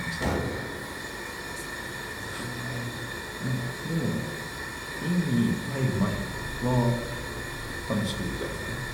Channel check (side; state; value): both; identical; correlation 1.00